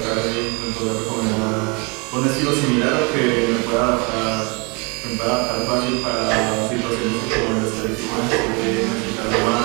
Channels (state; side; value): quieter; left; 31.0 dB